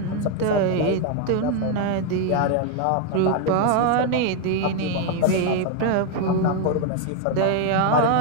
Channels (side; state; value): both; different; correlation 0.01